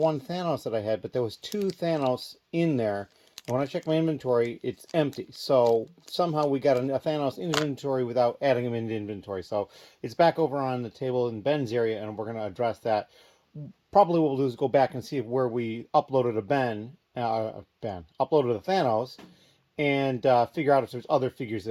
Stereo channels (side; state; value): both; identical; correlation 1.00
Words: Thanos that I had, but there was two Thanos in there. And when I check my inventory, it's empty. So somehow we got a Thanos in inventory without adding him into inventory. So it's back over on the table in Ben's area, and we're going to address that. Probably what we'll do is go back and see where we uploaded a uploaded a Thanos, and figure out if there's other figures